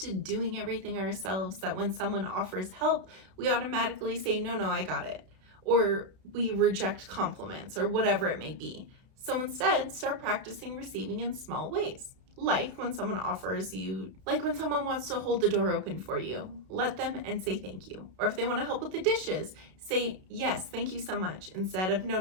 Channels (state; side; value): late; left; 32 ms